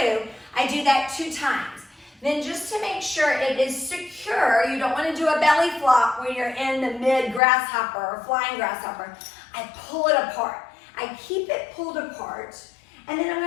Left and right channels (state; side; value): drops out; right; at 7.4 s